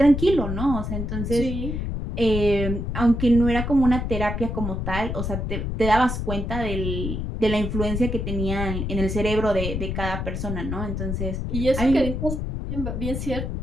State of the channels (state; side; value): noise; left; rumble, 3 dB below the sound